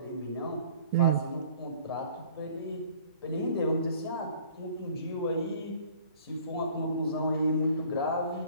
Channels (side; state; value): both; inverted; correlation -0.51